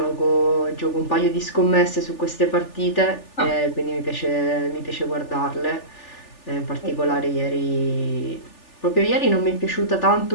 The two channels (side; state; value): right; late; 3.4 ms